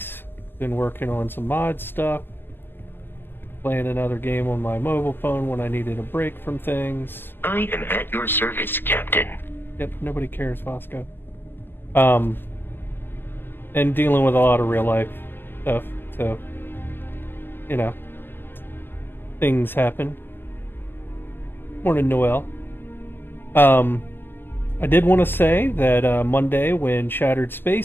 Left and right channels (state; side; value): late; right; 0.10 ms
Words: Been working on some mod stuff. Playing another game on my mobile phone when I needed a break from things. I am at your service, Captain. Yep, nobody cares, Vasco. And dealing with a lot of real life stuff, so, you know, things happen. Morning, Noel. I did want to say that Monday, when Shattered